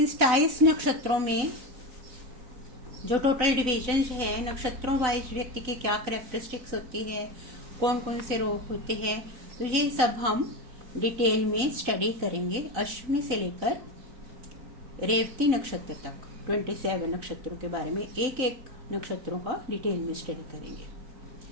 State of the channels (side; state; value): left; late; 3.9 ms